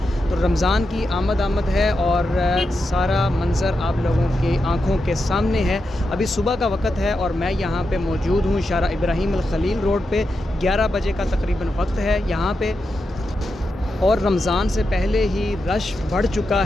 तो रमज़ान की आमद है और सारा मंज़र आप लोगों की आँखों के सामने है। अभी सुबह का वक़्त है और मैं यहाँ पे मौजूद हूँ शारा इब्राहिम अल खलील रोड पे। 11 बजे का तकरीबन वक्त है यहाँ पे और रमज़ान से पहले ही रश बढ़ चुका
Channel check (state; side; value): normal; both; correlation 0.87